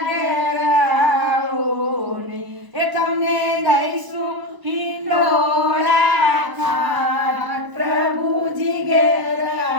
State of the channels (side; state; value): left; late; 1.0 ms